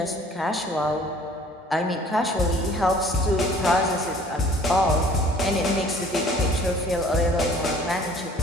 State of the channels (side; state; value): both; normal; correlation 0.53